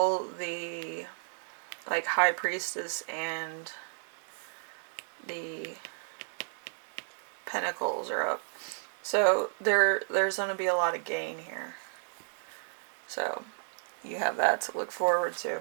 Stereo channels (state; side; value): silent; left; digital silence